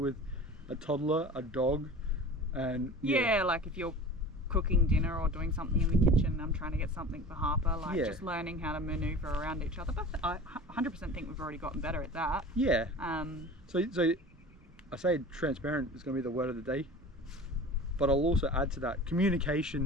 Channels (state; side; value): normal; both; correlation 0.38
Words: with a toddler, a dog, and yeah, like if you're cooking dinner or doing something in the kitchen and I'm trying to get something for Harper, like just learning how to maneuver around each other. But I 100% think we've already gotten better at that. Yeah. So I say transparent is going to be the word of the day, but I'll also add to that,